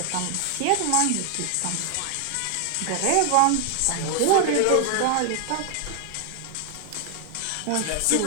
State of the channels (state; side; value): different; both; correlation 0.00